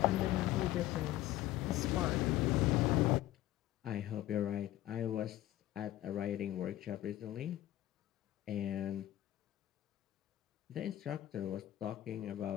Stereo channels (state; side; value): quieter; right; 14.4 dB